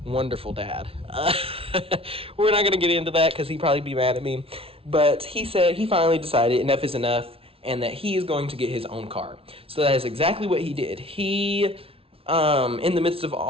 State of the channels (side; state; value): left; late; 0.27 ms